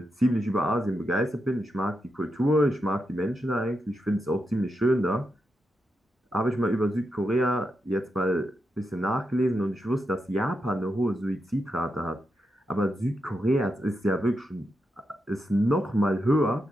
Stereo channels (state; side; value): normal; both; correlation 0.85